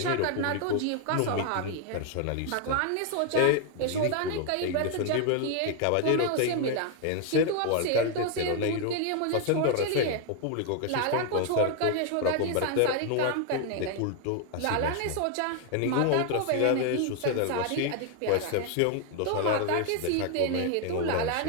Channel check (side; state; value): both; different; correlation 0.01